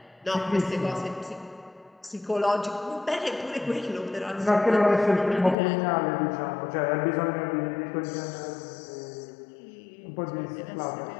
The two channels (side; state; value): right; drops out; at 5.6 s